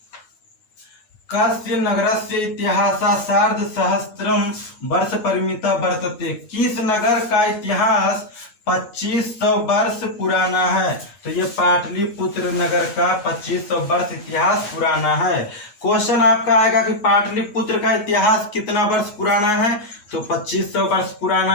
कस्य नगरस्य इतिहास सार्ध सहस्त्रम वर्ष परिमिता वर्तते, किस नगर का इतिहास 2500 वर्ष पुराना है? तो ये पाटलिपुत्र नगर का 2500 वर्ष इतिहास पुराना है। क्वेश्चन आपका आएगा कि पाटलिपुत्र का इतिहास कितना वर्ष पुराना है? तो 2500 वर्ष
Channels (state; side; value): late; right; 9.4 ms